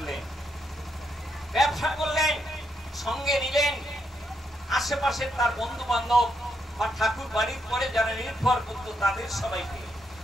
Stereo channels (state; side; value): normal; both; correlation 0.79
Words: করলেন, সঙ্গে নিলেন আশেপাশে তার বন্ধু বান্ধব বা ঠাকুর বাড়ির পরে যারা নির্ভর করত তাদের সবাইকে।